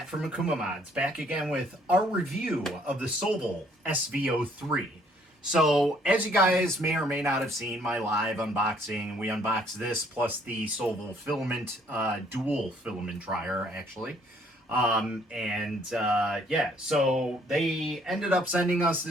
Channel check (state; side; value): normal; both; correlation 0.63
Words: from Akumamods, back again with our review of the Sovol SV03. So, as you guys may or may not have seen my live unboxing, we unboxed this plus the Sovol filament, dual filament dryer actually. Yeah, so they ended up sending us